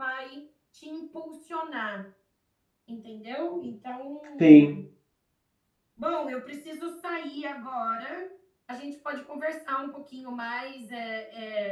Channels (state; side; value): identical; both; correlation 1.00